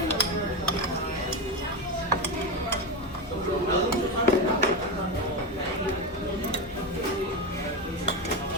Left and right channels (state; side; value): normal; both; correlation 0.15